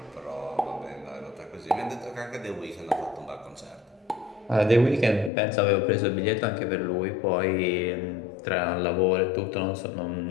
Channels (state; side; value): drops out; right; at 5.3 s